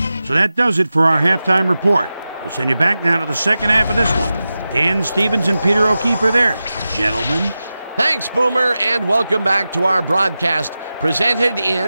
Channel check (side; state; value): both; inverted; correlation -0.93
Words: So that does it for our halftime report. We'll send you back now to the second half of this one. Dan Stevens and Peter O'Keefe are there. Gentlemen. Thanks, Boomer, and welcome back to our broadcast presented